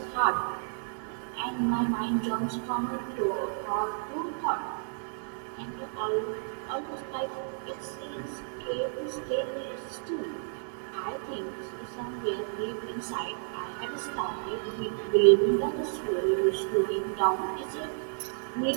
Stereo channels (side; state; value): left; silent; digital silence